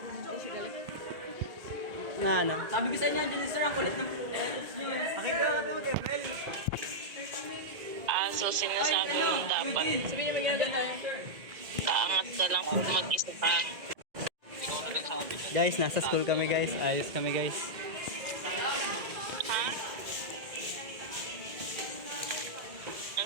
Na ano? Sabi ko sa inyo, dyan sir, ang kulit ng letters nyo. Pakita ka ito, Gabriel. So sinasabi mo dapat kaangat ka lang kung mag-isa ka. Guys, nasa school kami guys. Ayos kami guys. Ha?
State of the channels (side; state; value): left; late; 2.0 ms